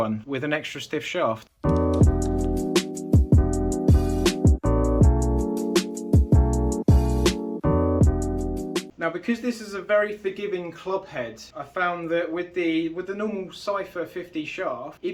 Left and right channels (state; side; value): identical; both; correlation 1.00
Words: with an extra stiff shaft. Now, because this is a very forgiving club head, I found that with the normal Cypher 50 shaft,